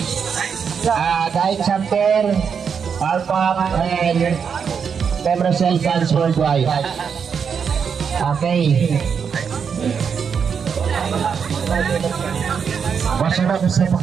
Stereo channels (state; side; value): quieter; left; 6.7 dB